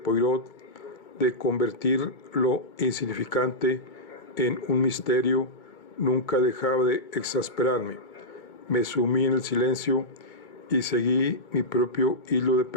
de convertir lo insignificante en un misterio nunca dejaba de exasperarme. Me sumí en el silencio y seguí mi propio hilo de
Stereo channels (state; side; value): late; right; 2.2 ms